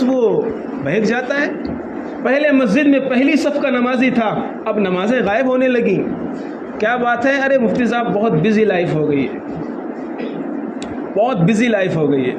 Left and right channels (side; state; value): both; identical; correlation 1.00